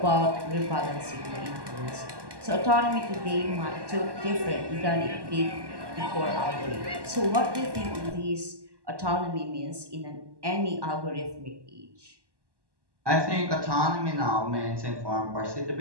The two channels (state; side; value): late; left; 1.1 ms